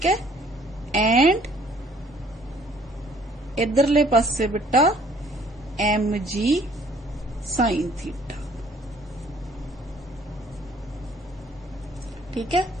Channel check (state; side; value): normal; both; correlation 0.59